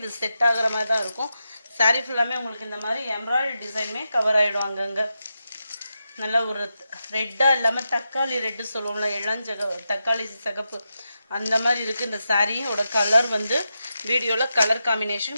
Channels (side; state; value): both; inverted; correlation -0.88